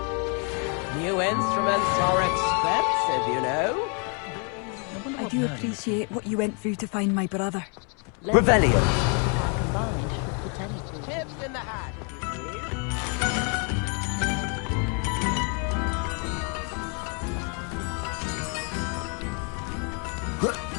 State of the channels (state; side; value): quieter; right; 38.3 dB